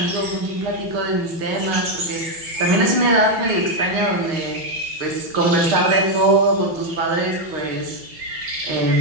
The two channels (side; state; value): left; late; 6.4 ms